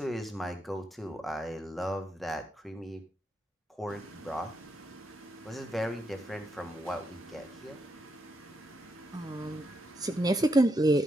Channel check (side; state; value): both; normal; correlation 0.81